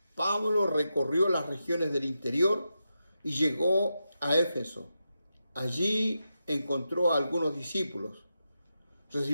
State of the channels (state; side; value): inverted; both; correlation -0.88